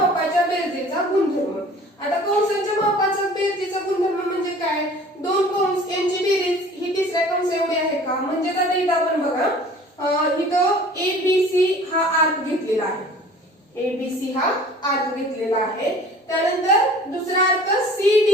बेरजेचा गुणधर्म. आता कंसांच्या मापाचा बेरजेचा गुणधर्म म्हणजे काय, दोन कंस यांची बेरीज ही तिसऱ्या कंस एवढी आहे का. म्हणजे आता इथं आपण बघा इथं ABC हा आर्क घेतलेला आहे, ABC हा आर्क घेतलेला आहे. त्यानंतर दुसरा आर्क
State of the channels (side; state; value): both; normal; correlation 0.47